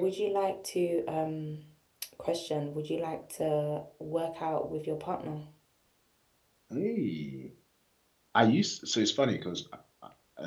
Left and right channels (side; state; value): both; identical; correlation 1.00